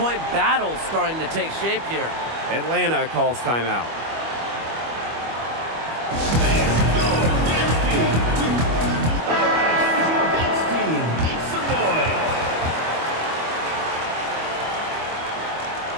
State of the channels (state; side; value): late; left; 25 ms